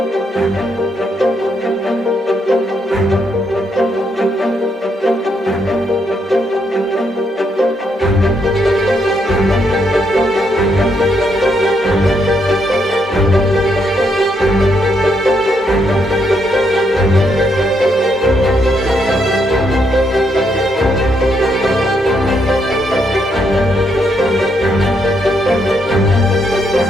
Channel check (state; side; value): normal; both; correlation 0.76